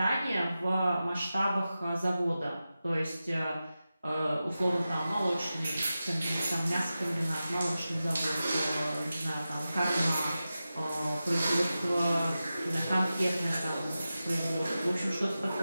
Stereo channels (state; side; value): inverted; both; correlation -0.93